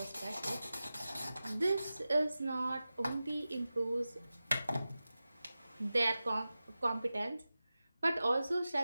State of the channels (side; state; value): both; inverted; correlation -0.95